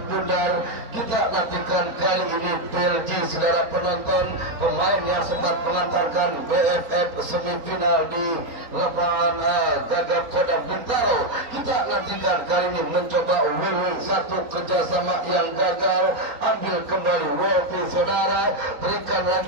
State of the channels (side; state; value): left; late; 3.9 ms